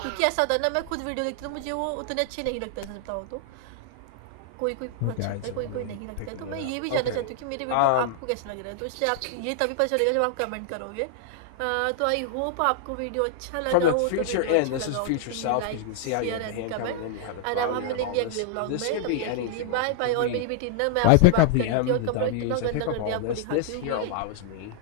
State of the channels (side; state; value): both; different; correlation -0.01